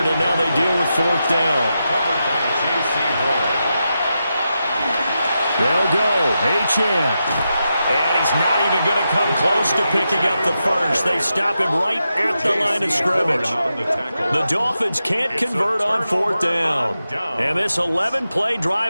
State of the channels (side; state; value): both; inverted; correlation -0.88